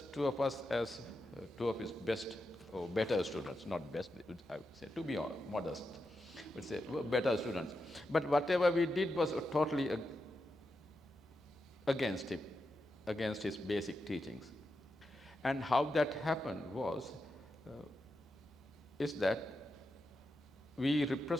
2 of us as 2 of his best or better students, not best, I would say, to be modest, would say better students. But whatever we did was totally against him, against his basic teachings. And how that happened is that we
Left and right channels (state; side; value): noise; right; hum, 27 dB below the sound